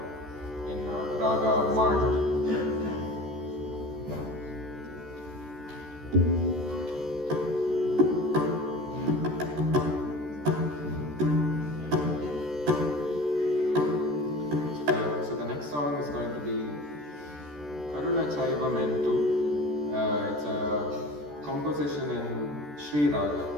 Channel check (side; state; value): left; late; 14 ms